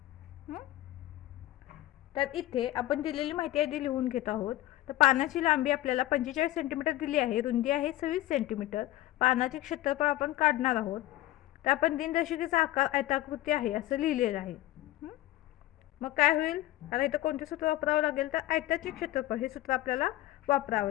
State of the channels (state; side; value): quieter; right; 15.9 dB